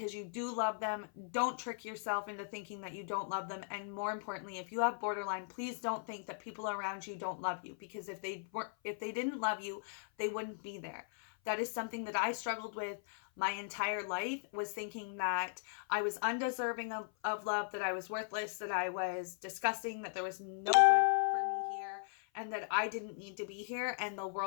you do love them. Don't trick yourself into thinking that you don't love them. And more importantly, if you have borderline, please don't think that people around you don't love you, because if they didn't love you, they wouldn't be there. That is something that I struggled with my entire life, was thinking that I was undeserving of love, that I was worthless, that I was disgusting, that there was no good for me here, and that I didn't need to be here and the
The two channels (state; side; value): silent; right; 52 dB below the other